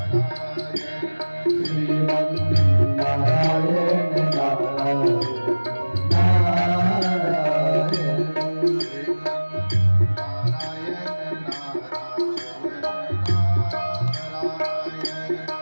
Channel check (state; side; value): inverted; both; correlation -1.00